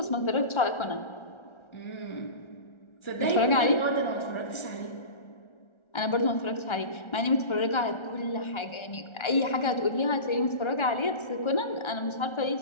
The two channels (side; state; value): right; late; 1.3 ms